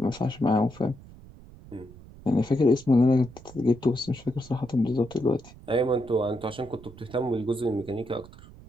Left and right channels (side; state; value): right; noise; rumble, 20 dB below the sound